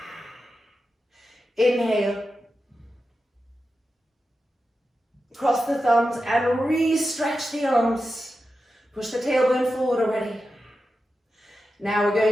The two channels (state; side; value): normal; both; correlation 0.91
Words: Inhale. Cross the thumbs and re-stretch the arms. Push the tailbone forward already. Now we're